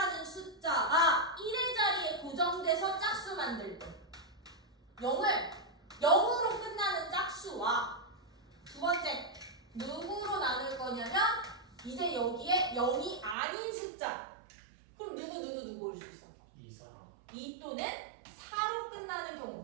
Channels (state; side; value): drops out; left; at 13.4 s